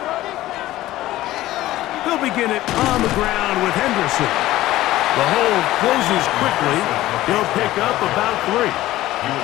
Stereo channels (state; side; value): quieter; right; 15.7 dB